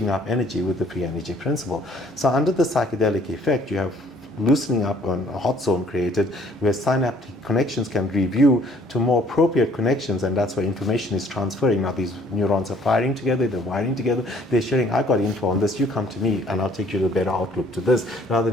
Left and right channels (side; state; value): both; normal; correlation 0.59